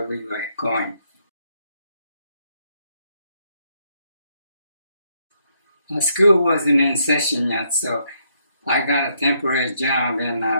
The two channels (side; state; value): both; inverted; correlation -0.74